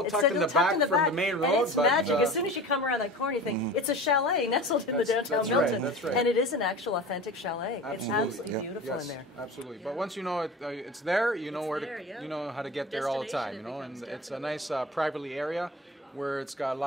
tucked in the back from the main road. And it's but, magic. As soon as you come around that corner, you think, it's a chalet nestled in the downtown Milton. That's right. And it is an actual authentic chalet. Absolutely. It's absolutely beautiful yes, in there. Absolutely. Yeah. But once you know it's there, you know yeah. you know how to get there all the time. You know, and it's a nice privately area where it's got a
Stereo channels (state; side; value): normal; both; correlation 0.35